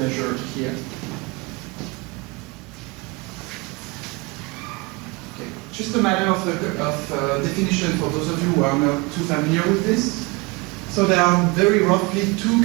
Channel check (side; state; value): left; quieter; 25.9 dB